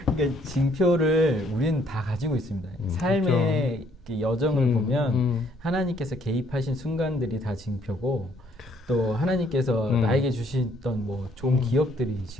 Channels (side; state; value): both; normal; correlation 0.66